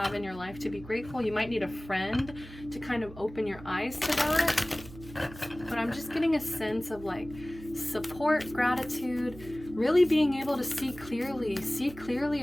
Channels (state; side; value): noise; right; hum, 16 dB below the sound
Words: in your life to be grateful. You might need a friend to kind of open your eyes to that. But I'm just getting a sense of like support, gratitude, really being able to see clearly